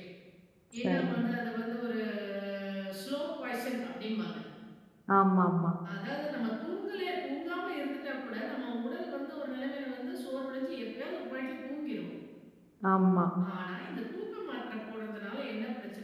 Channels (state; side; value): identical; both; correlation 1.00